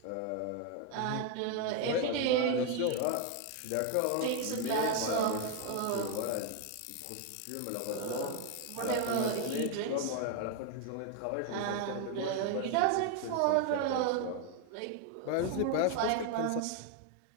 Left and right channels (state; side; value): different; both; correlation 0.01